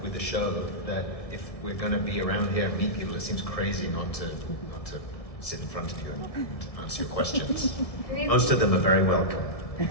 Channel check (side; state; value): right; late; 1.7 ms